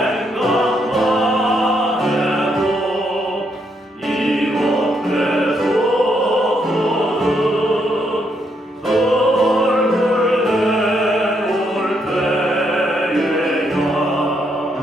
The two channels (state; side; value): normal; both; correlation 0.76